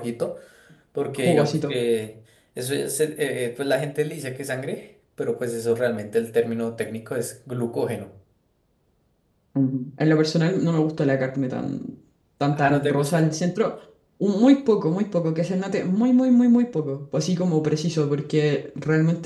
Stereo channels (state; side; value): identical; both; correlation 1.00